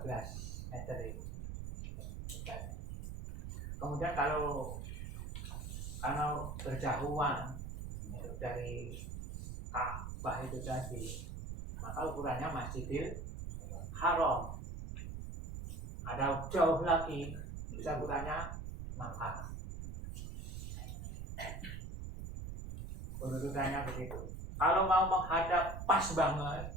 meter itu. Lebarnya. Kemudian kalau berjauhan itu dari Ka'bah itu tadi, maka ukurannya Masjidil Haram. Ada jauh lagi, bisa ukurannya Makkah. Urutannya begitu. Kalau mau menghadap pas banget,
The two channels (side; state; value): right; noise; rumble, 6 dB below the sound